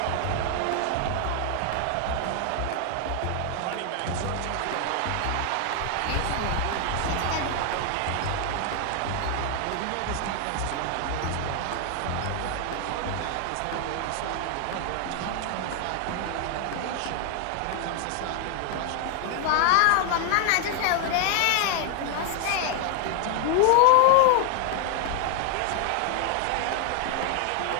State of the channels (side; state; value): both; different; correlation 0.00